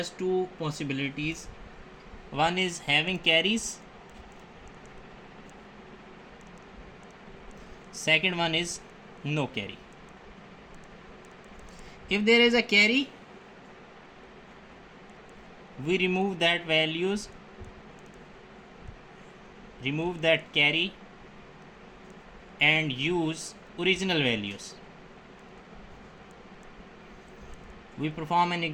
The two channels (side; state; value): both; identical; correlation 1.00